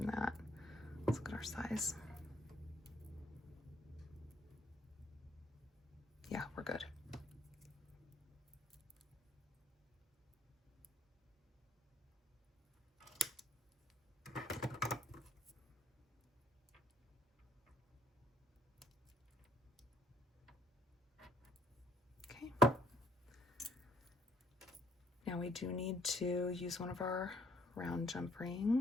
that. Let's look at our size. Yeah, we're good. Okay. Now we do need to use one of our round jump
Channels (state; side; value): normal; both; correlation 0.65